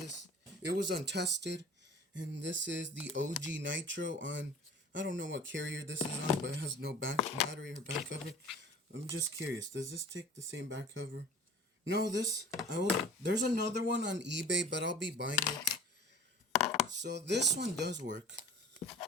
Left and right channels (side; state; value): both; normal; correlation 0.42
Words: it was untested. And this is the Ojji Nitro on, I don't know what carrier this is on, but it has no battery or back cover. I'm just curious, does this take the same back cover? No, there's another one on eBay, but I'll be buying it. So this one does work.